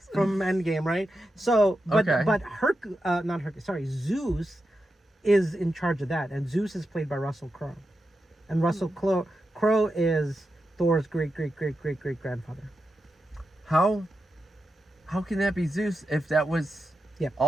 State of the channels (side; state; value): both; normal; correlation 0.89